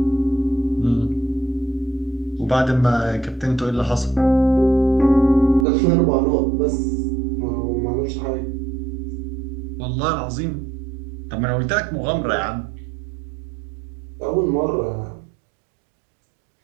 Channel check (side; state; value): left; drops out; at 5.7 s